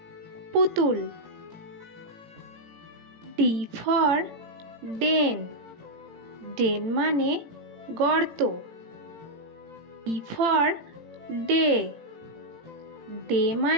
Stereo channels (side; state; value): left; late; 18 ms